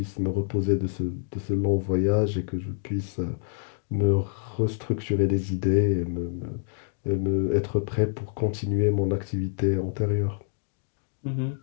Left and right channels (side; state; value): right; silent; digital silence